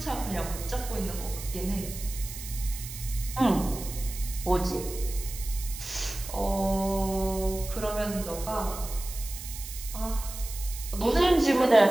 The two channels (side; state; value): right; noise; hiss, 11 dB below the sound